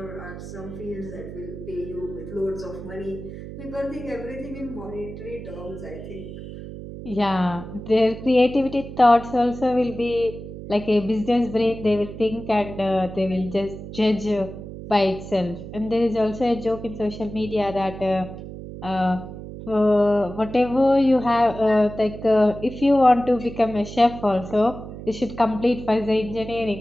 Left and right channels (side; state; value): right; noise; hum, 11 dB below the sound